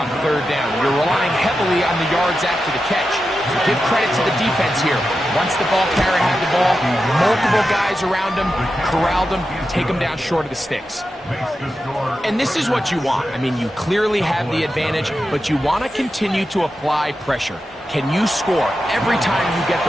third down, you're relying heavily on the yards after the catch. So give credit to the defense here. Once the ball carrier had the ball, multiple guys around him, corralled him, take him down short of the sticks. And this is what you want. I mean, you clearly have the advantage, but you want to continue to apply pressure. Can you score every time you get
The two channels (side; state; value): both; normal; correlation 0.90